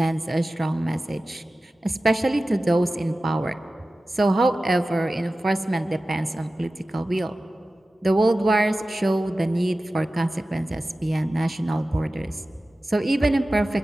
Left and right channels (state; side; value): normal; both; correlation 0.95